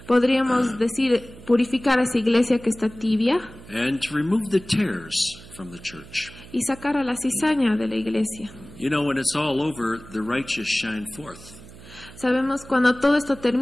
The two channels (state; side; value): noise; right; hum, 19 dB below the sound